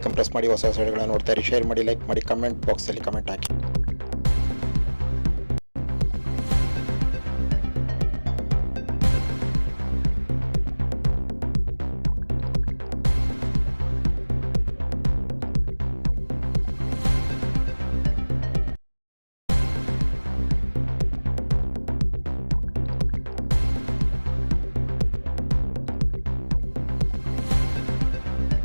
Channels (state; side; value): inverted; both; correlation -1.00